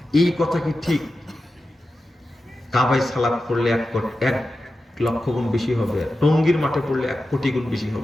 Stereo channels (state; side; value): normal; both; correlation 0.92